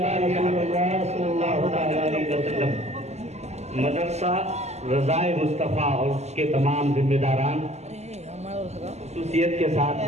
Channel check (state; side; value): late; left; 0.32 ms